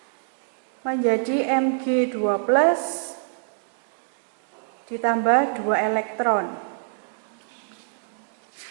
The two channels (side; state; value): left; silent; digital silence